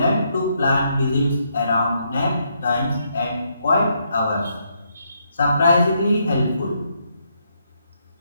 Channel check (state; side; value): inverted; both; correlation -0.76